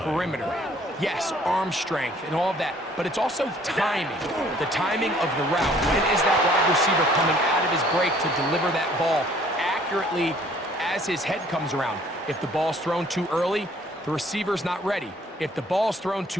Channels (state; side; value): normal; both; correlation 0.58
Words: Yes, arm strength and all of that, but it's also timing. The timing of the route. When is that wide receiver coming out of his break to deliver that ball accurately as his head comes around? If the ball's thrown too early, the receiver's not ready. If the ball's thrown